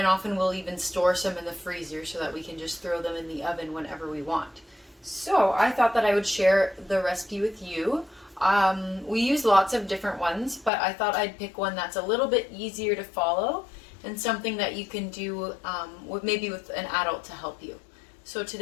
often we'll even store some in the freezer so that we can just throw them in the oven whenever we want. So I thought that I would share the recipe with you. We use lots of different ones, but I thought I'd pick one that's a little bit easier to follow and something that you can do maybe with an adult to help you. So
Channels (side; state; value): right; drops out; at 10.7 s